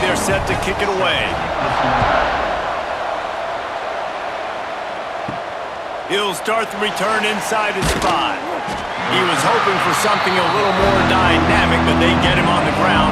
set to kick it away. He'll start the return inside his 5. He was hoping for something a little more dynamic, but they get him on the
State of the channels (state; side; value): identical; both; correlation 1.00